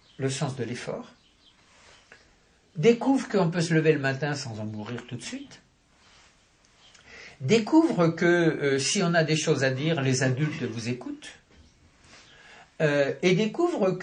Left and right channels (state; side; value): identical; both; correlation 1.00